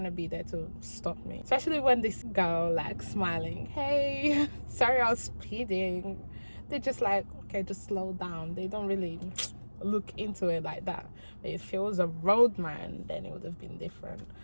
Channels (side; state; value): both; inverted; correlation -1.00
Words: be there to stop me? Especially when this girl like smiling, hey, sorry I was speeding. They're just like, okay, just slow down. They don't really look into it like that. But if it was a roadman, then it would have been different.